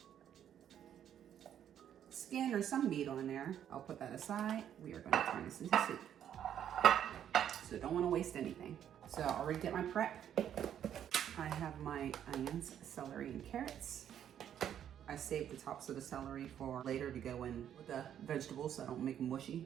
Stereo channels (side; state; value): left; quieter; 9.9 dB